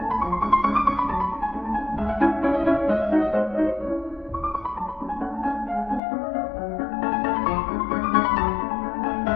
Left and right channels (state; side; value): drops out; right; at 6.0 s